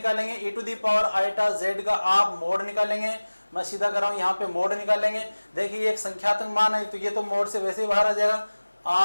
e to the power iota z का आप मोड निकालेंगे, मैं सीधा कर रहा हूं, यहाँ पे मोड निकालेंगे। देखिए ये एक संख्यात्मक मान है, तो ये तो मोड से वैसे ही बाहर आ जाएगा।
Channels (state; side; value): inverted; both; correlation -1.00